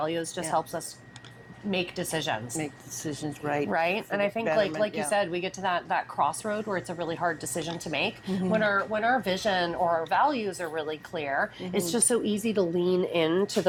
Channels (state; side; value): identical; both; correlation 1.00